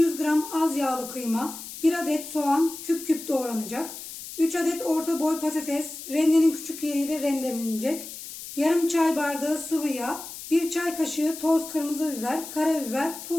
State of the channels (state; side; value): noise; left; hiss, 11 dB below the sound